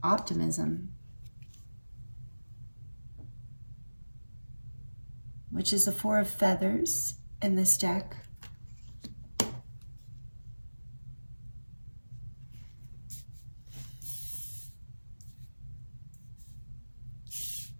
optimism, which is the 4 of Feathers in this deck.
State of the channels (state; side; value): inverted; both; correlation -1.00